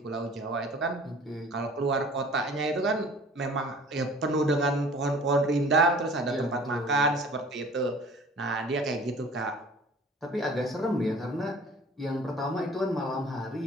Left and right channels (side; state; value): both; normal; correlation 0.48